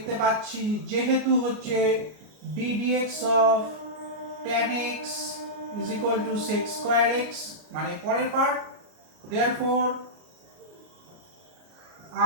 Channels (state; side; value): late; left; 33 ms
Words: পাচ্ছি যেহেতু হচ্ছে d dx of tan x is equal to sec square x, মানে পরের part, therefore